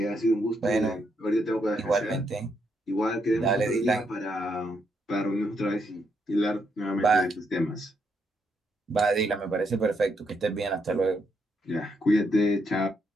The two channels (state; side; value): normal; both; correlation 0.78